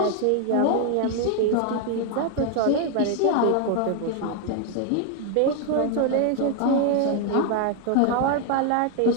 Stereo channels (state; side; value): different; both; correlation 0.00